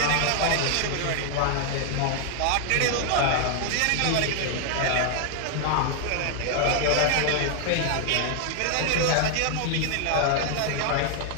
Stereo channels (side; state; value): both; different; correlation 0.00